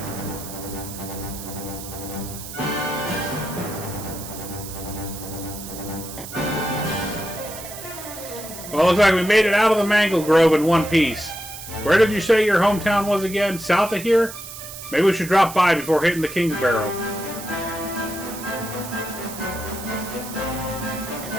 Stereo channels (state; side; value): noise; right; hiss, 12 dB below the sound